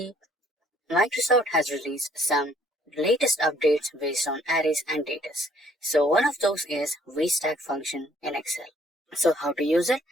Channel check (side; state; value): both; normal; correlation 0.62